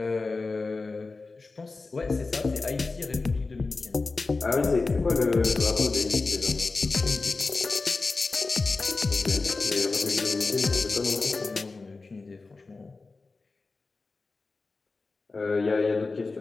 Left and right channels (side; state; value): right; quieter; 3.8 dB